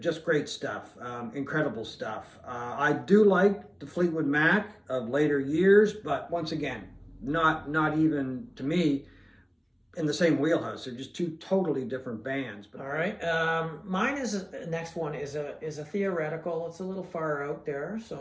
just great stuff. Incredible stuff. I do like the Fleetwood Mac of later years, but once again, not even to me in the same wheelhouse. They're just two totally different bands. All right. Mine next one is a theoretical. It's a little far out there, so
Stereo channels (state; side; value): identical; both; correlation 1.00